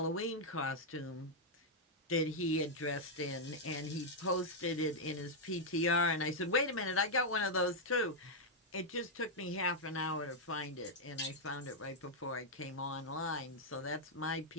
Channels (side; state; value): both; normal; correlation -0.03